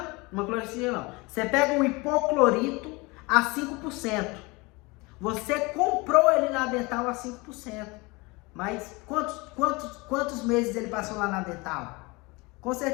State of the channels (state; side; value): quieter; right; 25.2 dB